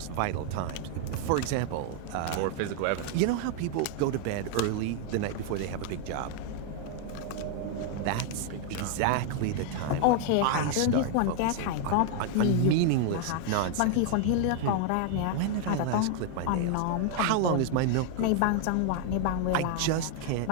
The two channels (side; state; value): both; different; correlation 0.00